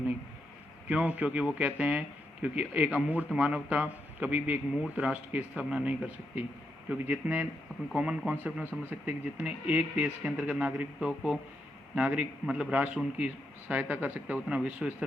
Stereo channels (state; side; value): normal; both; correlation 0.82